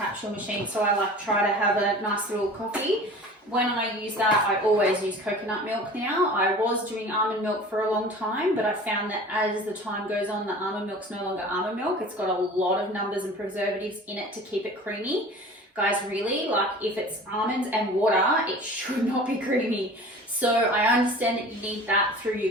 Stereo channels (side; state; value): both; normal; correlation 0.41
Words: machine, so I try to have a nice little coffee. when I use that, I always use coconut milk now. I was doing almond milk for a long time, but I found that as the time goes on, the almond milk's no longer almond milk. It's got a lot of numbers and preservatives in it to keep it creamy. Guys, really, like if it's almonds and water, it should not be creamy. So I understand that you need that through